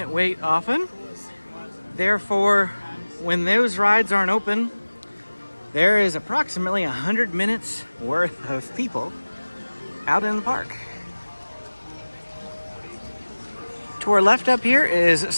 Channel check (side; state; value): both; inverted; correlation -1.00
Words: wait often. Therefore, when those rides aren't open, there is approximately 100 minutes worth of people out in the park. To our left up here is